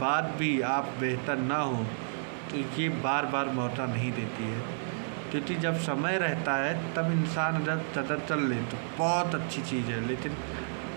भी आप बेहतर ना हो तो ये बार बार मौका नहीं देती है। क्योंकि जब समय रहता है तब इंसान अगर कदर चल ले तो बहुत अच्छी चीज़ है, लेकिन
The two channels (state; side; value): silent; left; digital silence